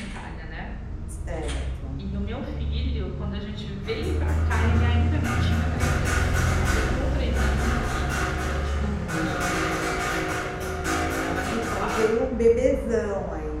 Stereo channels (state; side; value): identical; both; correlation 1.00